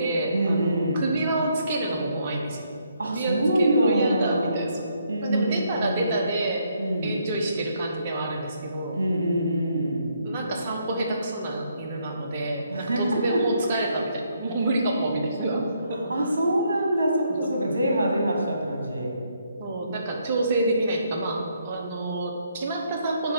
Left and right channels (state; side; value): inverted; both; correlation -0.73